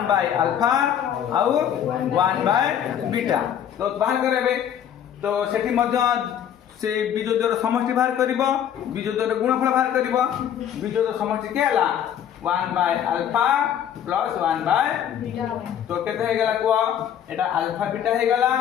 आउ 1/बीटा तो बाहर करबे तो सेठी मध्य से बीजोद्वर समष्टि बाहर करिवो बीजोद्वर गुणफल बाहर करिवो बीजोद्वर समष्टि के हला 1/अल्फा प्लस 1/बीटा तो केते हे गला को एटा अल्फा बीटा हे गला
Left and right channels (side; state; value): right; quieter; 9.6 dB